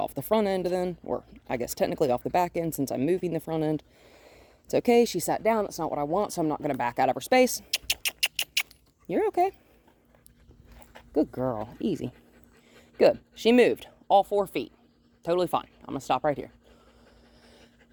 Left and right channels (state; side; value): identical; both; correlation 1.00